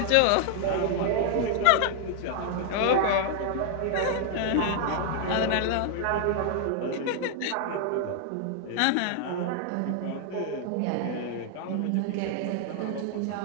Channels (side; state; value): both; different; correlation 0.00